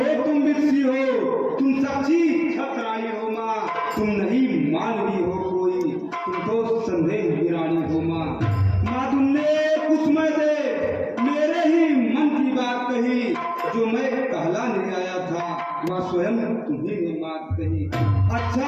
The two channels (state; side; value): identical; both; correlation 1.00